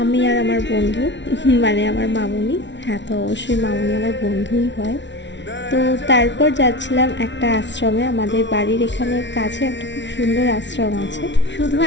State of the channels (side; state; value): right; late; 0.52 ms